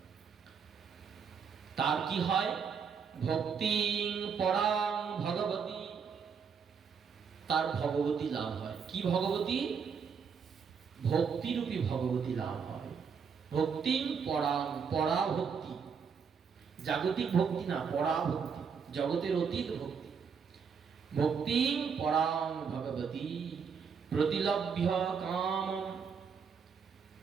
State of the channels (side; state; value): left; quieter; 6.3 dB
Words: তার কি হয়? ভক্তিং পরাং ভগবতী, তার ভগবতী লাভ হয়। কি ভগবতী? ভক্তিরূপী ভগবতী লাভ হয়। ভক্তিং পরাং, পরা ভক্তি, জাগতিক ভক্তি না, পরা ভক্তি, জগতের অতীত ভক্তি। ভক্তিং পরাং ভগবতী প্রতিলভ্য কাম,